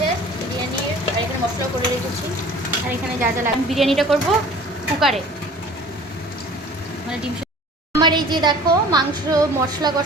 বিরিয়ানির, আর এখানে মশলা করে রেখেছি। আর এখানে যা যা লাগবে, বিরিয়ানিটা করব কুকারে, মানে ডিম। আমার এই যে দেখো মাংস মশলা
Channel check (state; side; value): normal; both; correlation 0.46